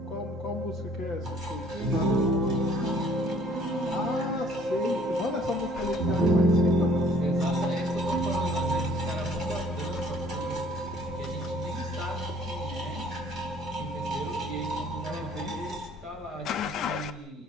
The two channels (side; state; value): both; normal; correlation 0.56